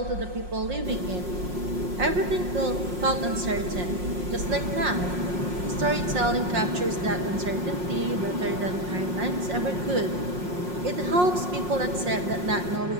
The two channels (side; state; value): left; late; 5.5 ms